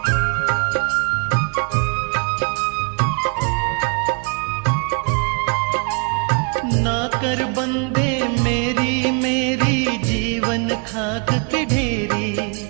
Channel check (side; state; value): left; quieter; 35.2 dB